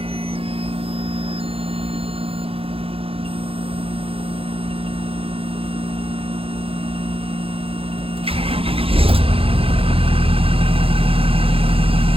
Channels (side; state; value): left; late; 0.27 ms